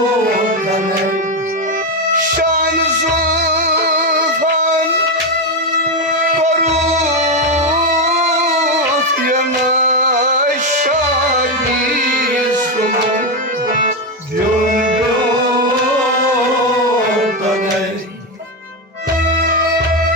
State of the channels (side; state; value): both; normal; correlation 0.09